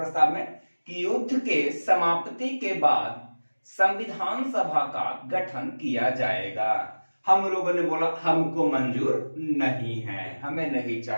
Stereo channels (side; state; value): both; inverted; correlation -1.00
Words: में कि युद्ध के समाप्ति के बाद संविधान सभा का गठन किया जाएगा। हम लोगों ने बोला हमको मंजूर नहीं है, हमें नहीं